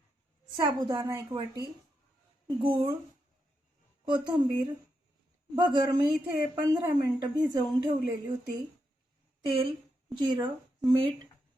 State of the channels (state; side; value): normal; both; correlation 0.84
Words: साबुदाणा 1 वाटी, गूळ, कोथिंबीर, भगर मी इथे 15 मिनिटं भिजवून ठेवलेली होती, तेल, जिरं, मीठ,